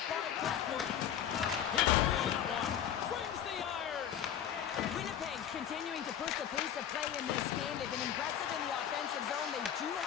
by Blackwood. He got that one. Brings the iron. Winnipeg's continuing to push the pace of play in this game. They've been aggressive in the offensive zone. They do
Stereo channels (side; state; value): right; quieter; 9.6 dB